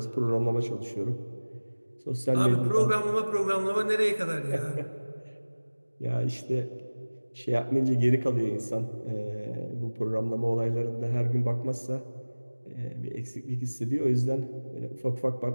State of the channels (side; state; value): both; inverted; correlation -1.00